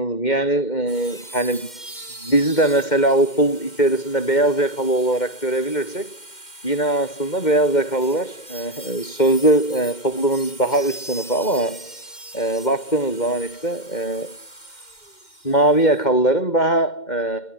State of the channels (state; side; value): late; right; 2.1 ms